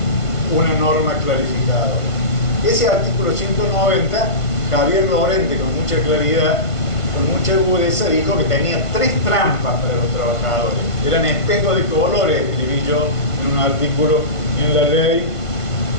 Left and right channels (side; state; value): right; late; 1.5 ms